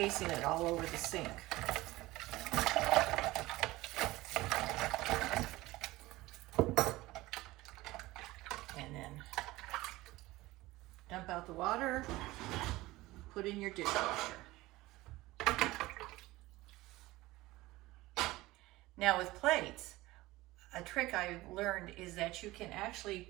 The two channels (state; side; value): quieter; left; 18.9 dB